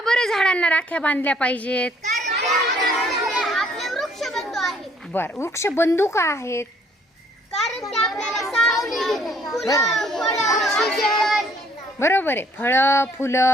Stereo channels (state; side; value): normal; both; correlation 0.62